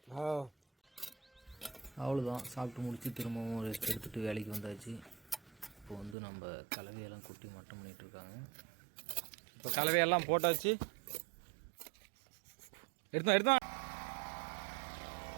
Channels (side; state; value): left; drops out; at 6.2 s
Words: அவ்வளோதான், சாப்பிட்டு முடிச்சு திரும்பவும் ரெஸ்ட் எடுத்துகிட்டு வேலைக்கு வந்தாச்சு. இப்போ வந்து நம்ம கலவையெல்லாம் கொட்டி மட்டம் பண்ணிகிட்ருக்காங்க. இப்போ கலவையெல்லாம் போட்டாச்சு. எடுத்தோம்